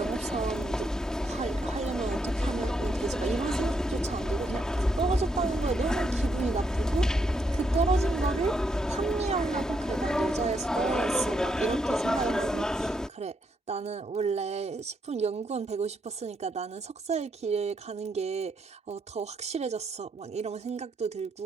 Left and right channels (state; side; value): normal; both; correlation 0.77